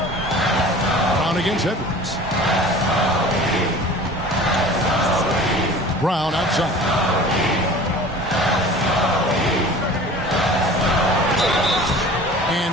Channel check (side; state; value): both; normal; correlation 0.42